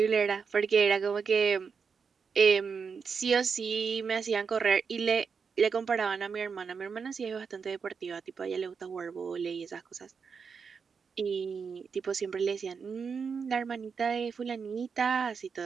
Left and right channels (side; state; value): left; quieter; 5.9 dB